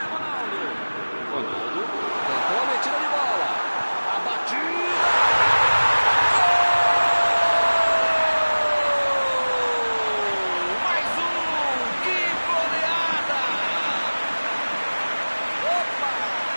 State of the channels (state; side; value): inverted; both; correlation -1.00